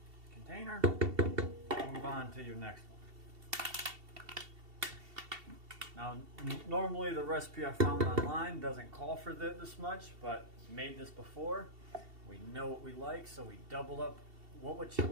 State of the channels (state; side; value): late; left; 2.7 ms